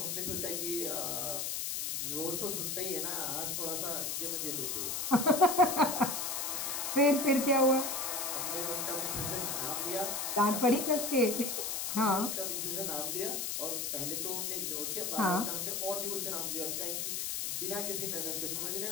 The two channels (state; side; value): noise; left; hiss, 1 dB below the sound